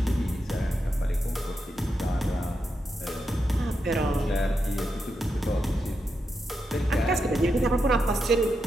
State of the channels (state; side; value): normal; both; correlation 0.86